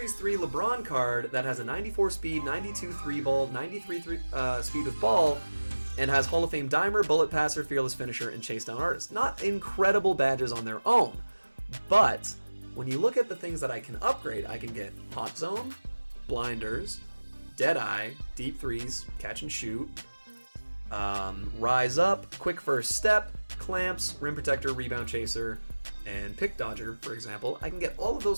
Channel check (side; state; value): both; inverted; correlation -1.00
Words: 3 LeBron card that has a 94 speed, 92 3-ball, 93 speed with ball, and has Hall of Fame Dimer, Bullet Passer, Fearless Finisher, and Chase Down Artist. Not incredible badges on their own, but when you look at the things that I can upgrade, I can get Hot Zone, Blinders, Deadeye, Deep Freeze, Catch and Shoot, Rise Up, Quick First Step, Clamps, Rim Protector, Rebound Chaser, and Pick Dodger, for example, I can get all of